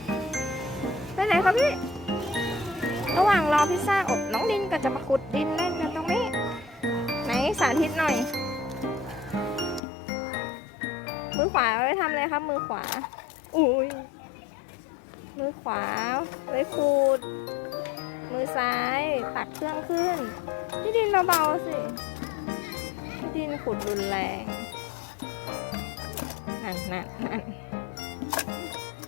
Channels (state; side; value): drops out; right; at 9.8 s